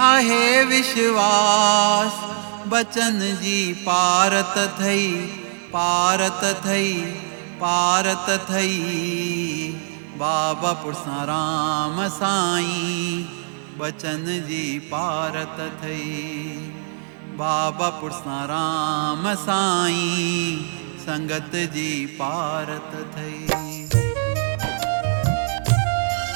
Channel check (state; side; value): silent; left; 61 dB below the other